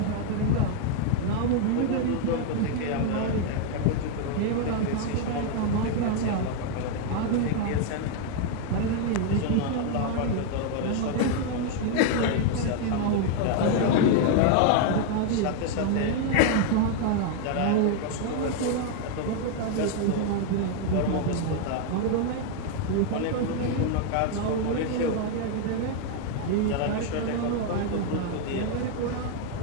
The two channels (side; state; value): both; different; correlation 0.01